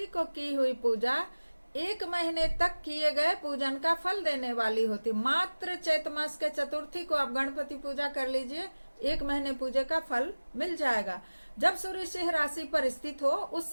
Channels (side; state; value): both; inverted; correlation -1.00